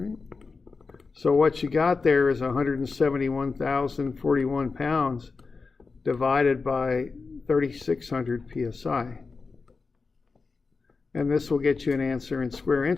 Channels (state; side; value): quieter; right; 4.4 dB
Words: So what you got there is 171,041 pounds divided by 3,600 psi. And this will get you an answer in square